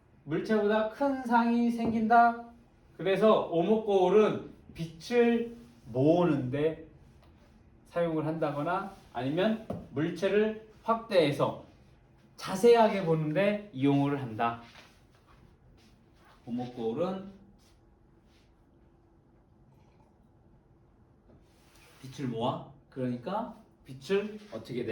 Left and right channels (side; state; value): both; identical; correlation 1.00